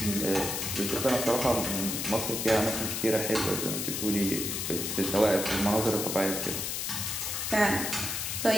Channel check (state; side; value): noise; left; hiss, 2 dB below the sound